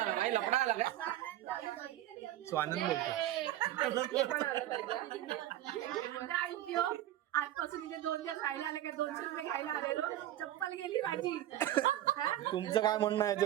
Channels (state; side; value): quieter; left; 13.5 dB